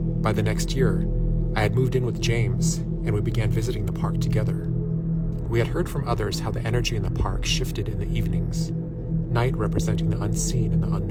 By the next year, I had moved in with James, and we began visiting the park together. We had heard from others how the energy in the park shifted in the evenings, night representing the unseen and the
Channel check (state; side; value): identical; both; correlation 1.00